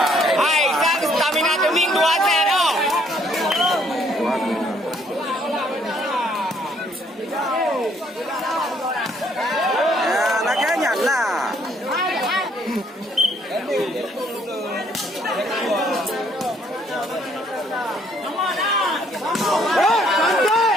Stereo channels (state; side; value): normal; both; correlation 0.66